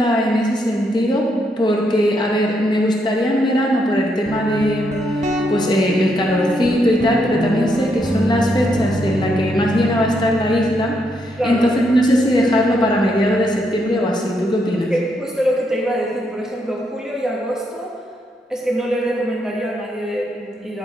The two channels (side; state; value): both; normal; correlation 0.77